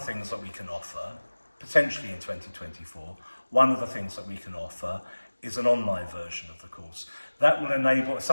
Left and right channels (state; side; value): inverted; both; correlation -1.00